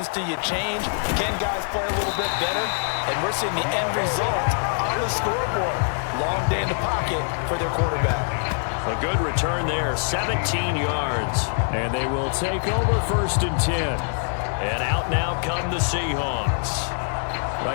do you change? Can guys play a little bit better? And we're seeing the end result on the scoreboard. Long day in the pocket for their quarterback. A good return there, 17 yards. And they will take over 1st and 10. And out now come the Seahawks.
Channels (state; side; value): silent; right; 63 dB below the other